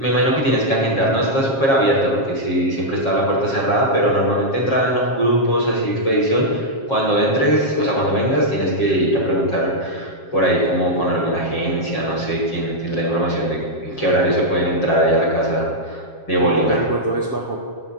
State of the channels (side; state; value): right; late; 7.4 ms